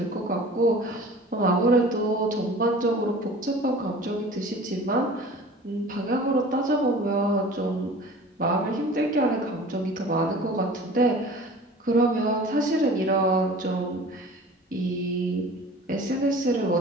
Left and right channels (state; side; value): normal; both; correlation 0.43